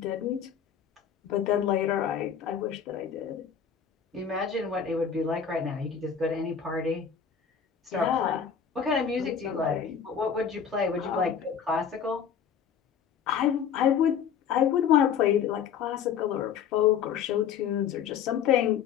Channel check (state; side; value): quieter; right; 7.7 dB